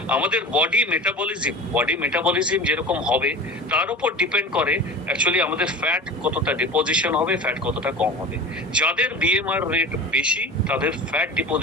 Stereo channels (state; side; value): normal; both; correlation 0.34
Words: আমাদের বডি মেটাবলিজম যেরকম হবে তার উপর ডিপেন্ড করে অ্যাকচুয়ালি আমাদের ফ্যাট কতটা ডিপোজিশন হবে, ফ্যাট কতটা কম হবে। যাদের বিএমআর রেট বেশি তাদের ফ্যাট